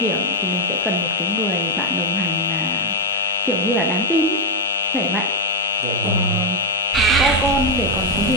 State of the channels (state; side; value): normal; both; correlation 0.06